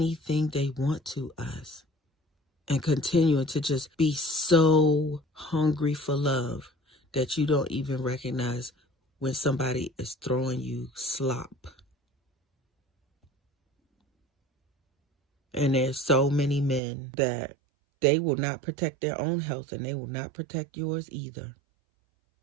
they want to us and continuing to just be so hungry for love that you don't even recognize when somebody is throwing you slop. And there's so many men that they will not protect their own health, and they will not protect yours either.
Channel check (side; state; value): left; drops out; at 16.8 s